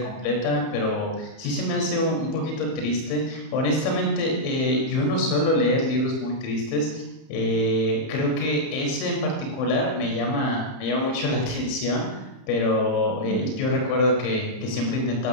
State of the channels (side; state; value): right; late; 31 ms